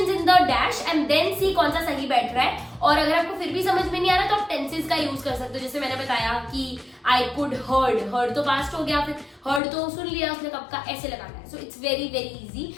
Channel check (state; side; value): drops out; right; at 9.6 s